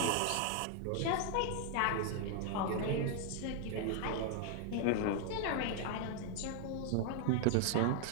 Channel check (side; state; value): both; different; correlation 0.00